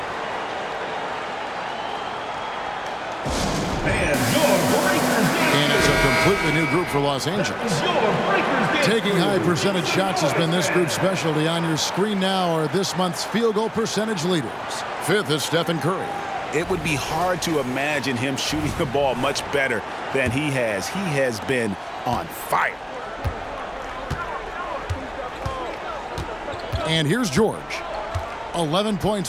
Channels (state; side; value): identical; both; correlation 1.00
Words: And it's a completely new group for Los Angeles. Taking high percentage shots has been this group's specialty. On your screen now are this month's field goal percentage leaders. 5th is Stephen Curry. It would be hard to imagine him shooting the ball much better than he has. He has been on fire. And here's George. 11